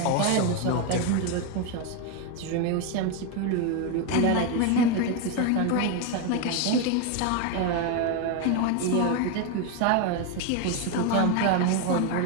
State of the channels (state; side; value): different; both; correlation 0.02